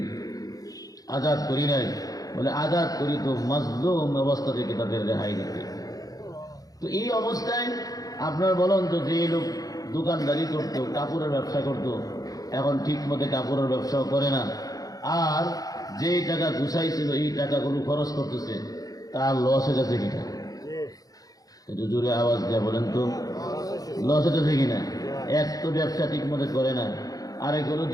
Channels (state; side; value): late; right; 0.18 ms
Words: আজাদ করি নাই। বলে, আজাদ করি তো মাজলুম অবস্থা থেকে তাদের রেহাই দিতে। তো এই অবস্থায় আপনার বলেন তো, যে লোক দোকানদারি করতো, কাপড়ের ব্যবসা করতো, এখন ঠিক মতো কাপড়ের ব্যবসাও করে না, আর যেই টাকা গুছাইছিল এই টাকাগুলো খরচ করতেছে, তার লস হয়ে যাচ্ছে কিনা? একটু জোরে আওয়াজ দেয়া বলেন তো, লস হতেছে কিনা? এক তো ব্যবসা ঠিক মতো করে না, আরেকগুলো